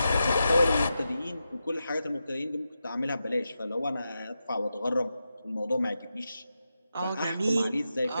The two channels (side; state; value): both; inverted; correlation -0.89